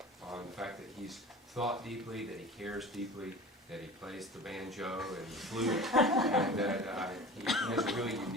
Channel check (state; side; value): normal; both; correlation 0.37